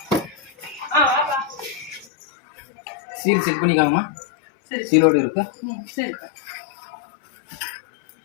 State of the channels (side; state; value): right; drops out; at 2.1 s